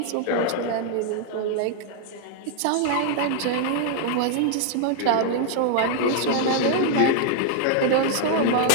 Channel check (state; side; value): different; both; correlation 0.00